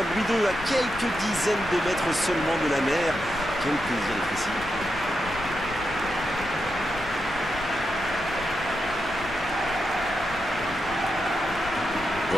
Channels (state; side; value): noise; left; rumble, 13 dB below the sound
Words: Louis II, à quelques dizaines de mètres seulement de la mer. Quel plaisir d'être ici.